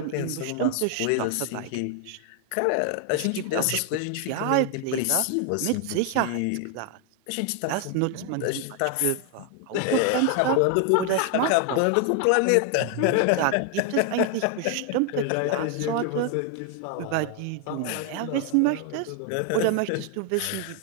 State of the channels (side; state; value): both; different; correlation 0.01